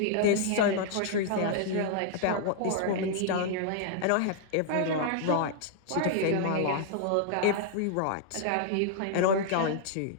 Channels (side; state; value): both; different; correlation -0.01